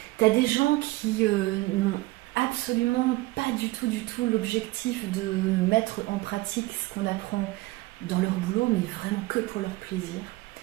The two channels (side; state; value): left; quieter; 20.2 dB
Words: Tu as des gens qui n'ont absolument pas du tout l'objectif de mettre en pratique ce qu'on apprend dans leur boulot, mais vraiment que pour leur plaisir.